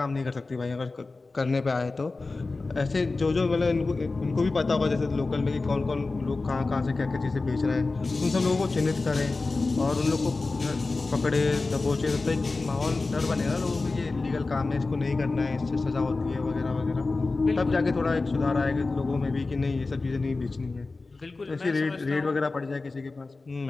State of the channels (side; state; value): right; quieter; 3.6 dB